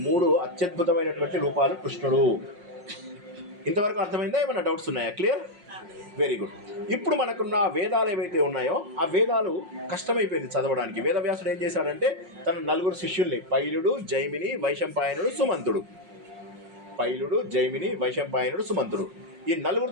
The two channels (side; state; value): left; late; 5.5 ms